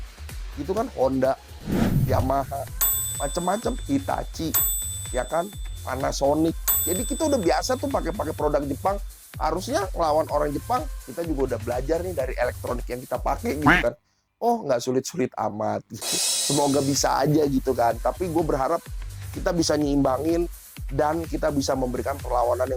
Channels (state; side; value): identical; both; correlation 1.00